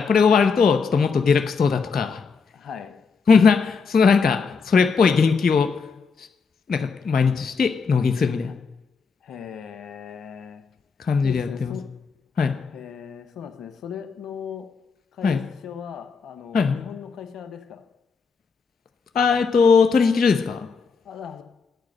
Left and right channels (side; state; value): right; quieter; 5.2 dB